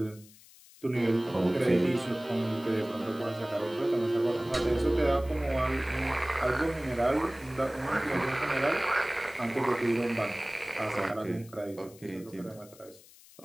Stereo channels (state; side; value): noise; left; hiss, 23 dB below the sound